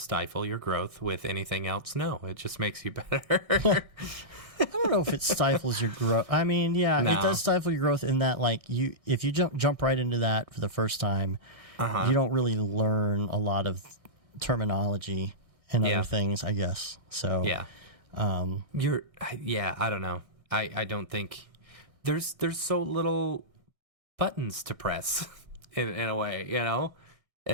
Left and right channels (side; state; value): left; late; 1.6 ms